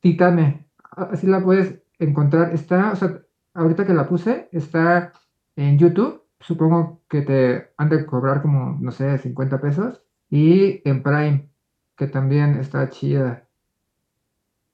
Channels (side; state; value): both; identical; correlation 1.00